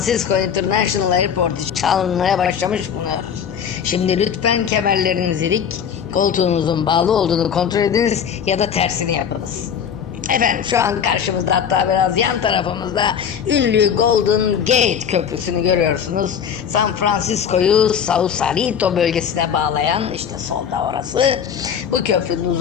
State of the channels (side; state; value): right; quieter; 7.9 dB